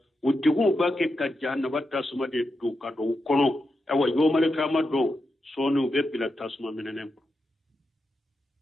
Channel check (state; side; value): normal; both; correlation 0.87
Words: utigu bake ka jahannaba tasuma de do ka do kono awa yo male kama do sonu be bila tasuma menenen